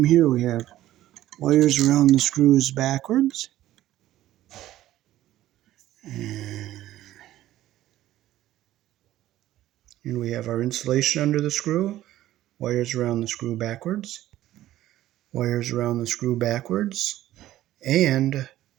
here. We have wires around the screws backwards. And we have our insulation under the screw. Wires around the screw backwards. Wires around the screw backwards. And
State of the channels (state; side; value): quieter; left; 14.2 dB